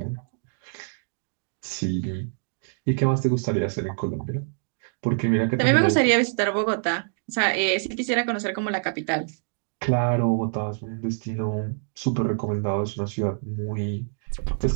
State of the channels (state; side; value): silent; left; digital silence